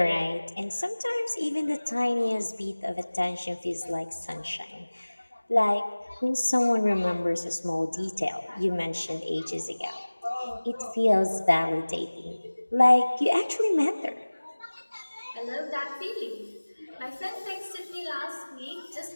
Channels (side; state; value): both; inverted; correlation -1.00